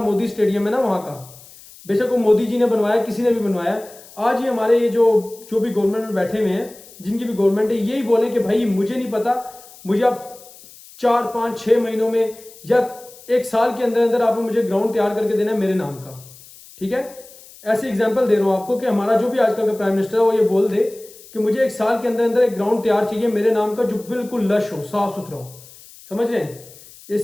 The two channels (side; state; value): left; noise; hiss, 21 dB below the sound